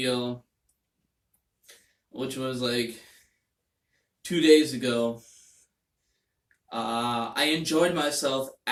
which was like 2 days ago, I enjoyed myself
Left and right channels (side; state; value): both; identical; correlation 1.00